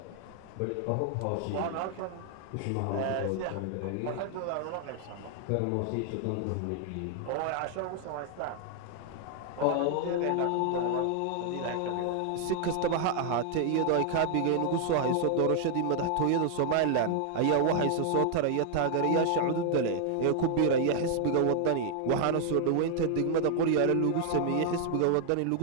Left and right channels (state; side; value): different; both; correlation 0.00